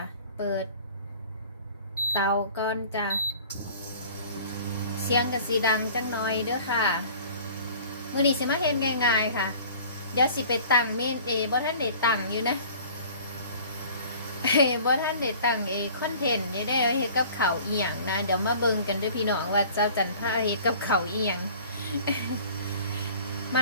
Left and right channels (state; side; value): inverted; both; correlation -0.47